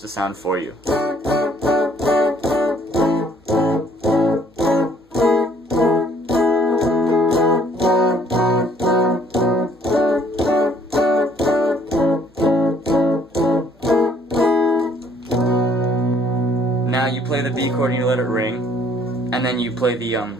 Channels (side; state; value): both; normal; correlation 0.61